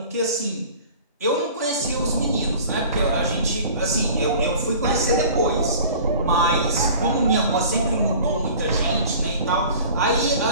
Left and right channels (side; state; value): both; inverted; correlation -0.44